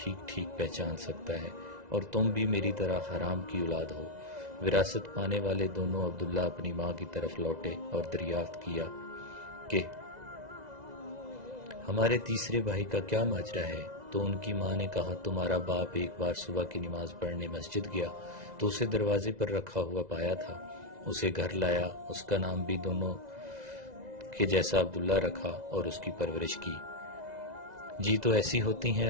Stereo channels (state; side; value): late; left; 2.0 ms